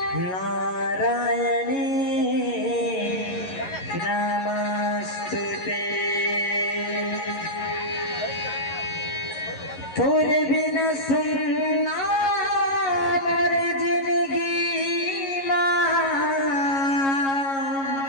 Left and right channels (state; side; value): late; right; 11 ms